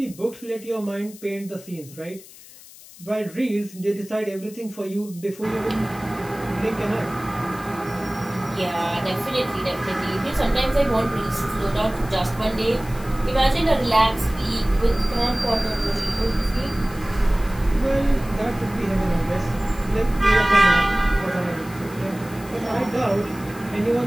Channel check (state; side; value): noise; left; hiss, 20 dB below the sound